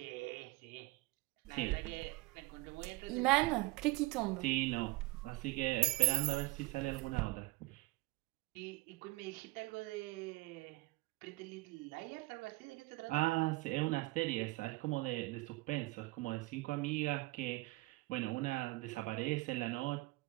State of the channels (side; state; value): left; quieter; 21.3 dB